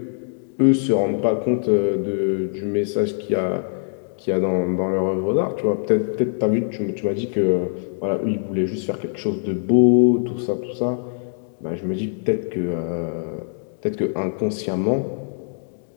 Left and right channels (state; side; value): silent; right; digital silence